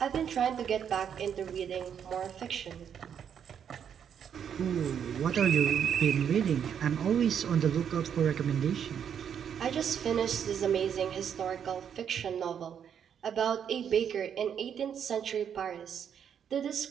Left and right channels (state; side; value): quieter; left; 8.3 dB